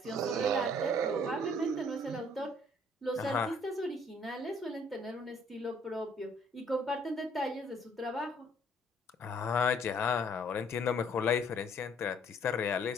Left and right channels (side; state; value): both; normal; correlation 0.61